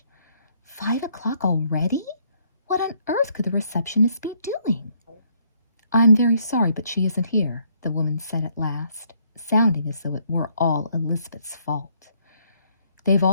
5 o'clock already? What on earth could the receptionist be doing? I'm very sorry, but she isn't here, the woman said at last, sounding as though it were all Elizabeth's fault. They've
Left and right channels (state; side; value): inverted; both; correlation -0.69